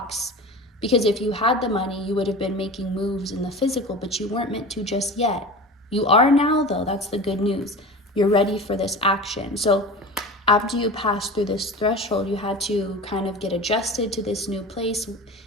because if you had the money, you would have been making moves in the physical, but you weren't meant to just yet. You are now, though. That's the good news. You're ready for this action. So after you passed through this threshold, you had to kind of get adjusted to this new place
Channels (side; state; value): both; normal; correlation 0.33